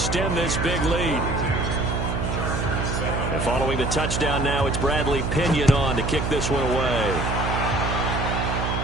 this big lead. And following the touchdown now, it's Bradley Pinion on to kick this one away.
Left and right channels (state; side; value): noise; right; hum, 1 dB below the sound